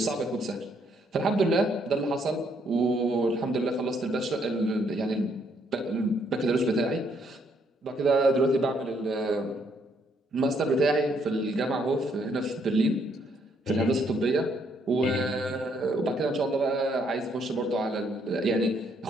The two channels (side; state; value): both; normal; correlation 0.70